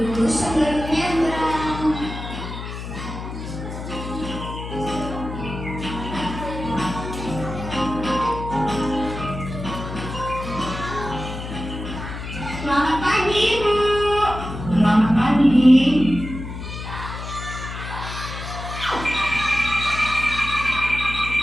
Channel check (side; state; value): left; noise; hum, 8 dB below the sound